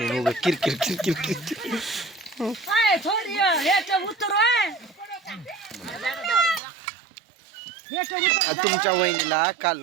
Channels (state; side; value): drops out; left; at 6.6 s